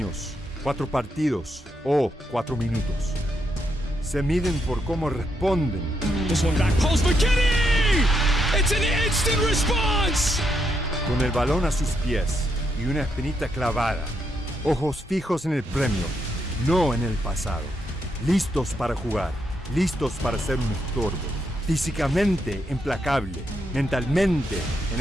4 partidos o 4 minutos. Se miden por cómo responden. This one back post McKinney! It's an instant response! Con el balón a sus pies y una espinita clavada. Ojos fijos en el premio, no en el pasado. Listos para jugar, listos para ser un estorbo. Físicamente implacable, mentalmente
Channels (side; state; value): both; normal; correlation 0.79